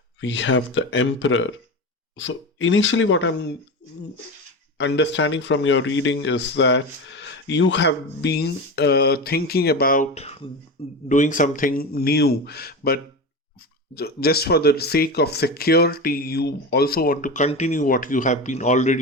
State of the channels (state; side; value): normal; both; correlation 0.24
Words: We have the Emperor. So initially what I'm understanding from your reading is that you have been thinking about doing something new, but just for the sake of security, you also want to continue what you have been